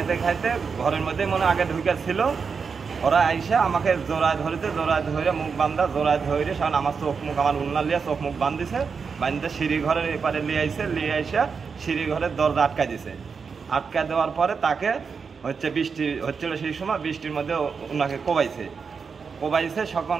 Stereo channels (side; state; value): left; quieter; 5.6 dB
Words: খাইতে ঘরের মধ্যে মনে আগে ঢুকে ছিল, ওরা আইসা আমাকে জোড়ায় ধরেছে, জোড়ায় ধরে মুখ বান্ধা, জোড়ায় ধরে সামনে আমার চোখ মুখ, আমার উন্না লিয়া চোখ মুখ বান্ধিছে, বান্ধতে সিঁড়ি ঘরের এপারে লিয়ে আইসে, লিয়ে আইসা সিঁড়ি ঘরের দরজা আটকা দিছে। আটকা দেওয়ার পরে তাকে হচ্ছে বৃষ্টি হচ্ছিল, সেই সময় বৃষ্টির মধ্যে ওনাকে কোবাইছে।